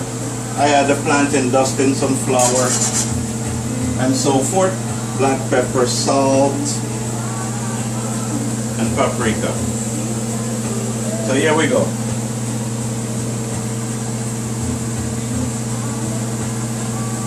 I had the plantain dust in some flour and so forth. Black pepper, salt, and paprika. So here we go.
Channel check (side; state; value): both; identical; correlation 1.00